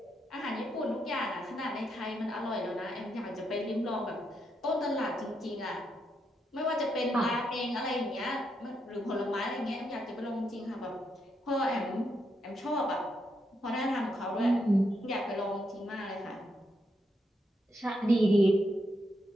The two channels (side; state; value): both; normal; correlation 0.80